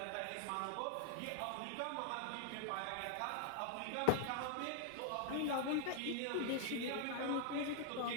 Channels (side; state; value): both; different; correlation 0.00